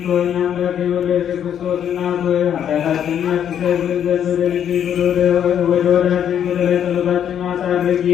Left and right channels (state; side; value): quieter; right; 9.3 dB